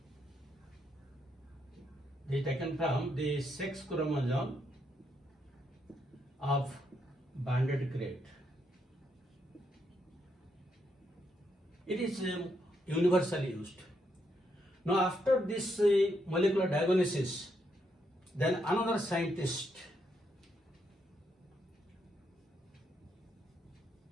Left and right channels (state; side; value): normal; both; correlation 0.78